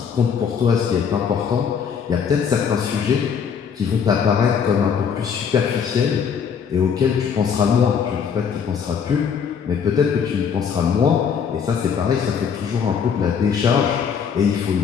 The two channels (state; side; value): quieter; right; 7.0 dB